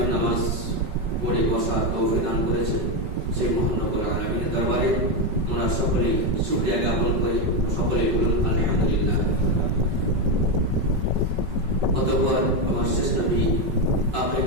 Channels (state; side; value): late; left; 5.3 ms